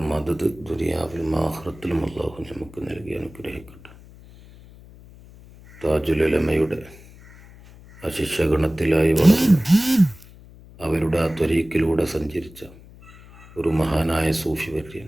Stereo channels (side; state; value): left; noise; hum, 21 dB below the sound